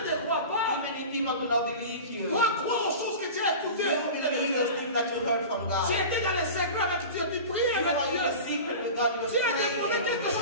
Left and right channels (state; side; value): inverted; both; correlation -0.33